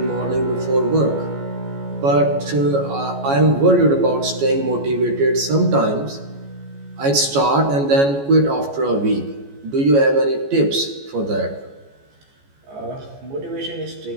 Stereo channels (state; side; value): late; left; 14 ms